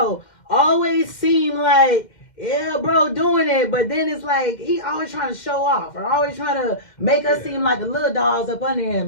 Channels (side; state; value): right; late; 2.1 ms